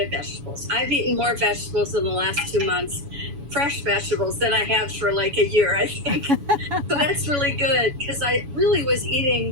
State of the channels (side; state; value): left; late; 7.1 ms